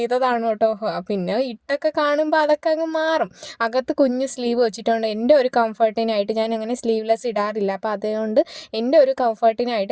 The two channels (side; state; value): both; identical; correlation 1.00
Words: കേട്ടോ. പിന്നെ ഇട്ടൊക്കെ കാണുമ്പോൾ അതൊക്കെ അങ്ങ് മാറും. അകത്ത് കുഞ്ഞ് സ്ലീവ് വെച്ചിട്ടുണ്ട്. എൻ്റെ ഒരു കംഫർട്ടിനായിട്ട് ഞാൻ അങ്ങനെ സ്ലീവ്ലെസ് ഇടാറില്ല. അപ്പോൾ അതുകൊണ്ട് എൻ്റെ ഒരു